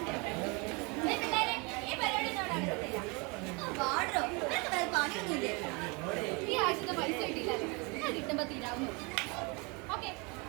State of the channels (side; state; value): left; quieter; 29.8 dB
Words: ഈ പരിപാടി നടക്കത്തില്ല. പാടോ നിനക്ക് വേറെ പണിയൊന്നുമില്ലേ? ഈ ആഴ്ചത്തെ പൈസ കിട്ടിയില്ലല്ലോ. ഞാൻ കിട്ടുമ്പോ തീരാവുന്നു. ഓക്കെ.